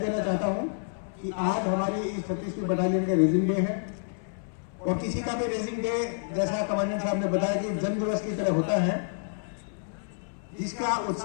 चाहता हूं कि आज हमारी इस 36वीं बटालियन का रेजिंग डे है। और किसी का भी रेजिंग डे, जैसा कमांडेंट साहब ने बताया, कि जन्म दिवस की तरह होता है, जिसका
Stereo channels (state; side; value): silent; right; 59 dB below the other